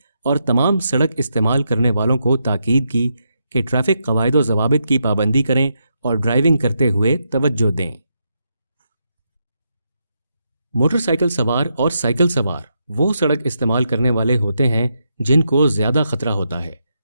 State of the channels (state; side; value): inverted; both; correlation -0.82